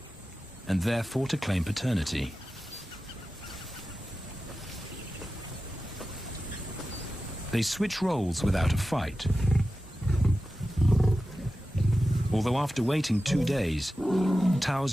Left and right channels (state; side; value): normal; both; correlation 0.93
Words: and therefore to claim paternity. They switch roles without a fight. Although after waiting 2 days,